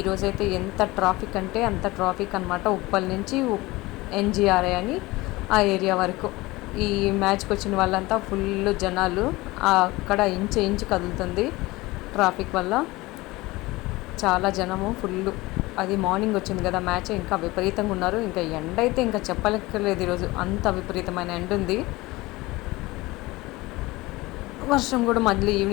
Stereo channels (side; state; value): right; quieter; 20.7 dB